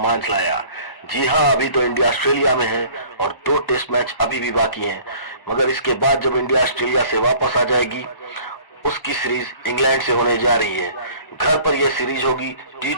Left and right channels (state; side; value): late; right; 1.1 ms